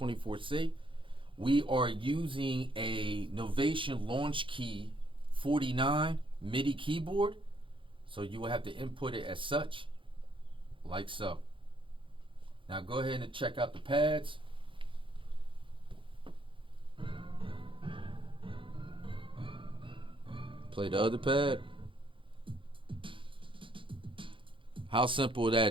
We are using a Novation Launch Key 49 MIDI keyboard. So you will have to input it as such, like so. Now go ahead and check out the pads. Play the other pad. How simple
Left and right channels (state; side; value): late; left; 0.25 ms